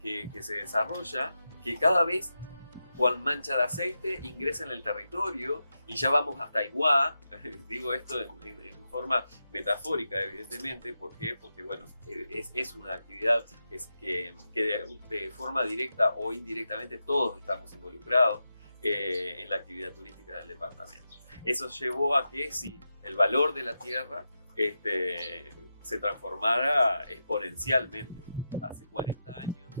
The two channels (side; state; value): both; inverted; correlation -0.88